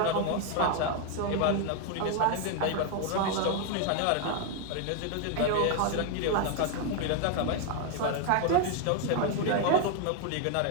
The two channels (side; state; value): both; different; correlation 0.01